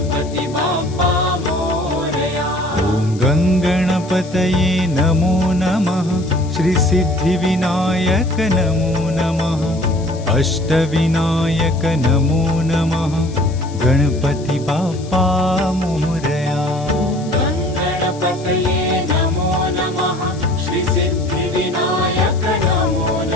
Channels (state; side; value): noise; left; hiss, 21 dB below the sound